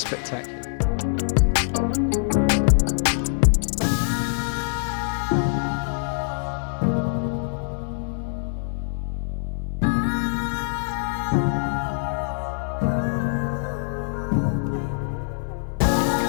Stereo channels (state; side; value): silent; right; 56 dB below the other